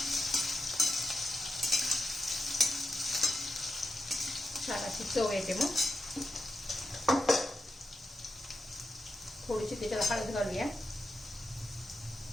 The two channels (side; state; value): both; normal; correlation 0.87